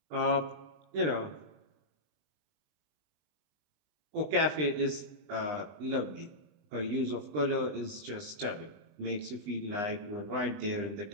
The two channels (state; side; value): late; left; 20 ms